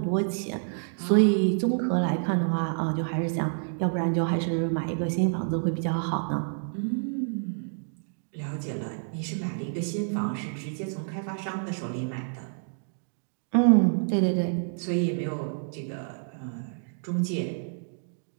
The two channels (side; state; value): left; silent; digital silence